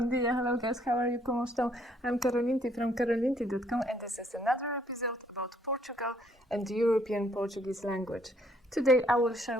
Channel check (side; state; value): both; normal; correlation 0.66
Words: dia, hello guys, how are you? ¿Cómo están? I'm Karolinti from karolinti.com and this is another episode about Portugal and the European Portuguese language. Today I will share